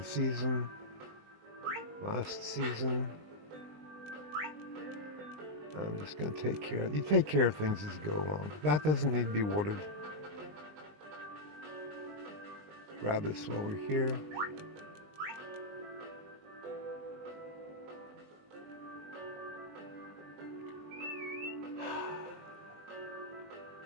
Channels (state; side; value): late; left; 20 ms